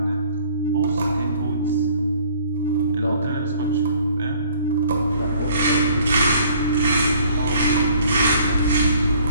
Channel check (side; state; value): both; inverted; correlation -0.56